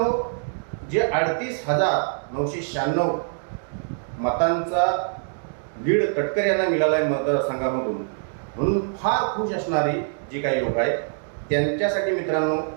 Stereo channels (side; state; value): left; silent; digital silence